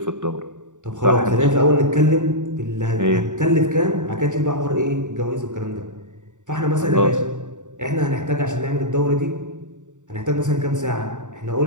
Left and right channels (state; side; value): late; left; 0.86 ms